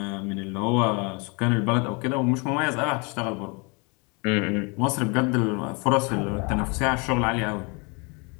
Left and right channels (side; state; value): right; quieter; 31.1 dB